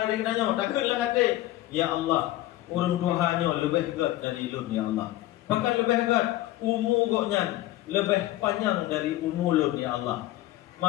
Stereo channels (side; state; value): right; quieter; 15.6 dB